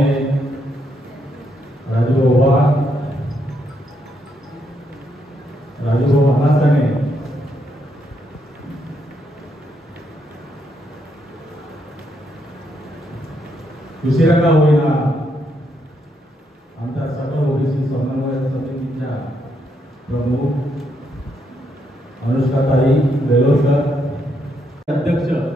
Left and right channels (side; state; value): both; normal; correlation 0.77